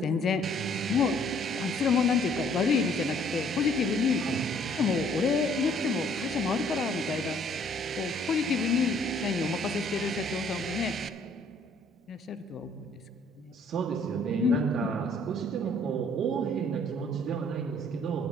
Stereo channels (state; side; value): normal; both; correlation 0.61